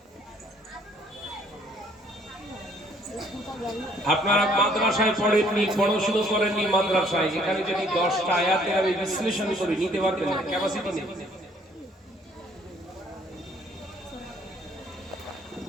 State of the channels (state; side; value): normal; both; correlation 0.62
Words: আপনারা মাদ্রাসায় পড়েননি, পড়াশোনা করেননি মাদ্রাসায়, এখানে যদি 10টা আয়াতের আমি বিশ্লেষণ করি নিতে পারবেন না, ক্যাপাসিটি নেই।